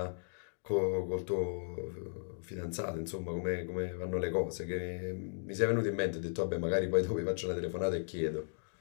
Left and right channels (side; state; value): right; silent; digital silence